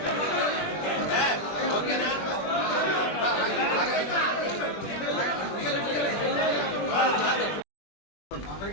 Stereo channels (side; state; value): right; late; 20 ms